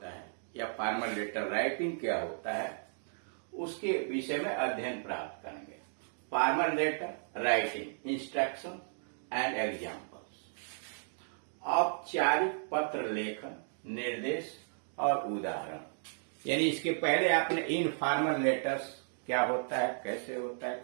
है या फॉर्मल लेटर राइटिंग क्या होता है उसके विषय में अध्ययन प्राप्त करेंगे। Formal letter writing instruction and examples, औपचारिक पत्र लेखन, निर्देश और उदाहरण। यानी इसके पहले आपने इनफॉर्मल लेटर्स क्या होता है, कैसे होता है,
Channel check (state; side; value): silent; left; digital silence